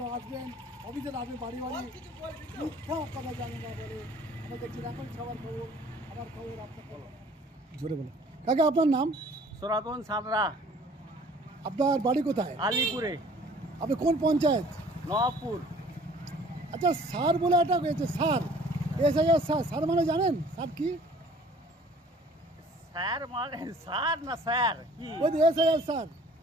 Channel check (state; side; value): normal; both; correlation 0.52